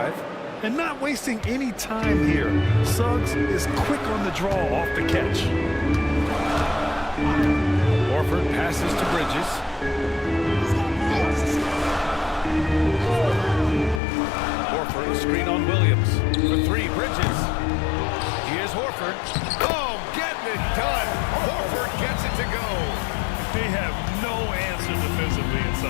And not wasting any time here. Suggs is quick on the draw off the catch. Horford passes to Bridges. Horford, screen on Williams. For 3, Bridges. Here's Horford. Oh, getting it done. Horford gets it to go. They have no answer defensively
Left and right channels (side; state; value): right; drops out; at 14.0 s